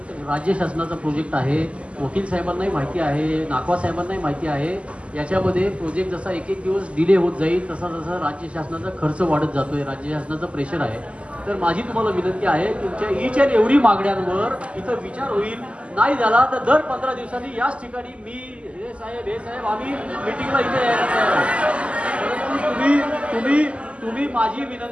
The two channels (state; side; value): late; left; 0.058 ms